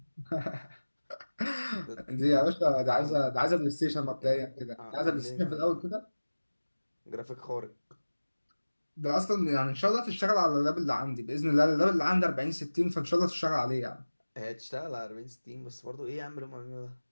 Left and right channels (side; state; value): both; inverted; correlation -1.00